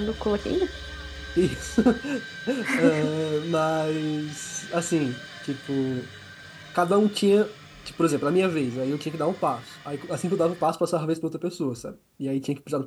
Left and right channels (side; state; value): both; identical; correlation 1.00